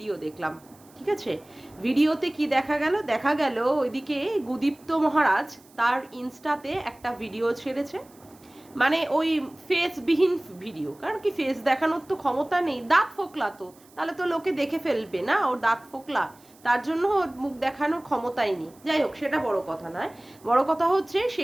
দেখলাম, ঠিক আছে? ভিডিওতে কি দেখা গেল ওইদিকে গুদীপ্ত মহারাজ তার ইনস্টাতে একটা ভিডিও ছেড়েছে। মানে ওই ফেসবিহীন ভিডিও, কারণ কি ফেস দেখানোর তো ক্ষমতা নেই, দাঁত ফোকলা তো, তাহলে তো লোকে দেখে ফেলবে না ওর দাঁত ফোকলা, তার জন্য ওর মুখ দেখানোর ক্ষমতাই নেই। যাই হোক, সেটা বড় কথা নয়। বড় কথা হচ্ছে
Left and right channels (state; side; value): noise; right; hiss, 28 dB below the sound